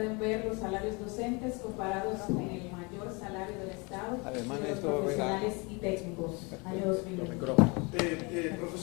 ver los salarios docentes comparados con el mayor salario del Estado, Además de de los esto, profesionales y técnicos, año 2021.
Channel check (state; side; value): quieter; right; 29.1 dB